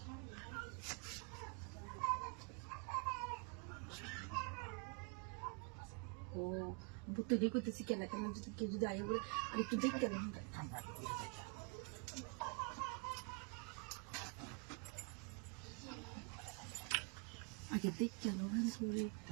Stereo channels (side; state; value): left; quieter; 35.4 dB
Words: ও বুঝতে দিয়ে করতেছি খেলা খেলা যদি কেউ যদি আয় বলে আর একটু দেখতে গেলাম আগে দেখতে গেলাম সরে